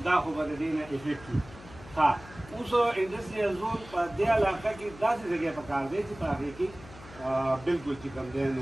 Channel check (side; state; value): left; noise; hum, 18 dB below the sound